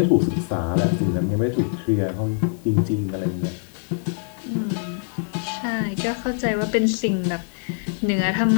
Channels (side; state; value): right; silent; digital silence